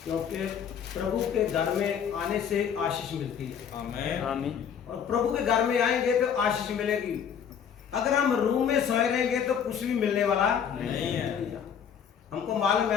क्योंकि प्रभु के घर में आने से आशीष मिलती है। आमीन आमीन। और प्रभु के घर में आएंगे तो आशीष मिलेगी। अगर हम रूम में सोए रहेंगे तो कुछ भी मिलने वाला नहीं है। हमको मालूम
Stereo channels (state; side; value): quieter; right; 7.9 dB